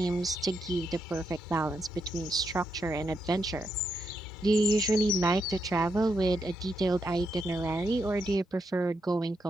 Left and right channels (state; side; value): normal; both; correlation 0.82